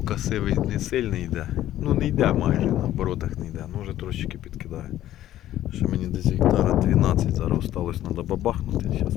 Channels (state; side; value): quieter; right; 13.0 dB